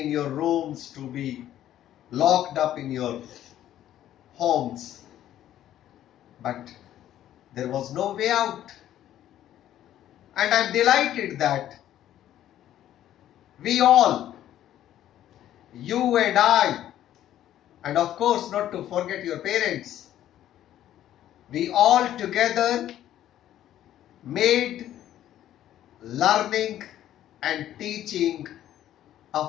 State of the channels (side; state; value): right; quieter; 12.1 dB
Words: your rooms, to be locked up in your homes, but there was no way out. And I'm delighted that we all, you and I, and of course not to forget your parents, we all together made learning and teaching